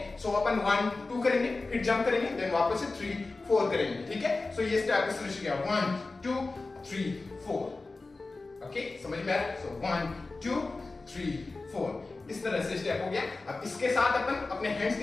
सो अपन 1 2 करेंगे, फिर जंप करेंगे, देन वापस से 3 4 करेंगे, ठीक है। सो ये स्टेप इस तरह से हो गया 1 2 3 4, ओके। समझ में आया? सो 1 2 3 4, इस तरह से स्टेप हो गया। अब इसके साथ अपन अपने हैंड्स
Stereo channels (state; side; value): quieter; right; 3.5 dB